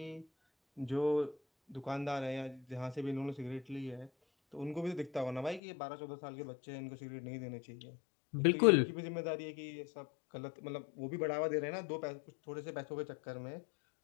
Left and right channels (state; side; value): drops out; right; at 5.6 s